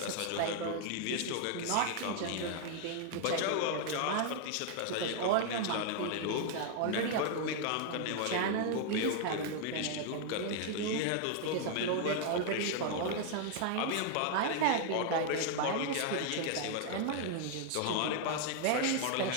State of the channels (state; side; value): different; both; correlation 0.00